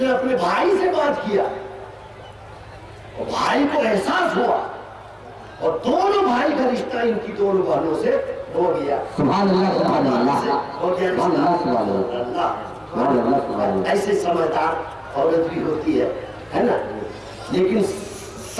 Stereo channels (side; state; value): both; identical; correlation 1.00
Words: अपने भाई से बात किया और भाई को एहसास हुआ, और दोनों भाई का रिश्ता इनकी दोनों बहनों से हो गया। ऐसे समझदार औरत भी होती है ना। लेकिन